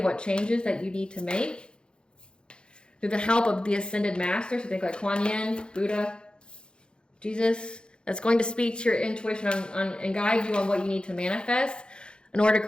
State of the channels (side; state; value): right; late; 0.051 ms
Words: what changes that you need to make. Through the help of the ascended masters, so think like Kuan Yin, Buddha, Jesus, that's going to speak to your intuition and guide you on what you need to manifest in order to